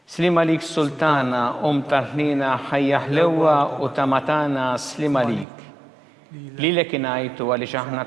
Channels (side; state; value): left; drops out; at 5.5 s